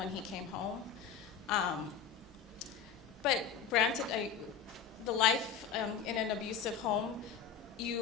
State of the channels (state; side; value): quieter; right; 7.4 dB